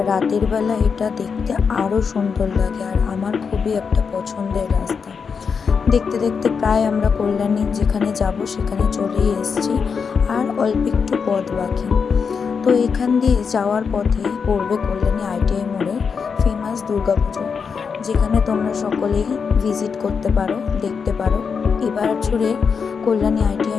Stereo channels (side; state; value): right; quieter; 5.9 dB